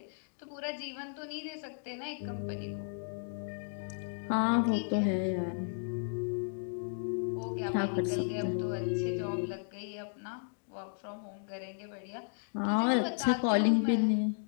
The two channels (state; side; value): silent; right; digital silence